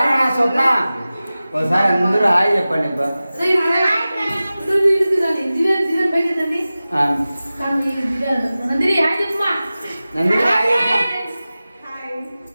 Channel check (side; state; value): both; inverted; correlation -0.96